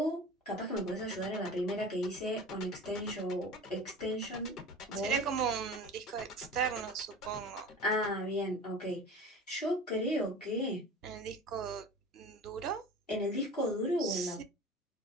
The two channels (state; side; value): normal; both; correlation 0.36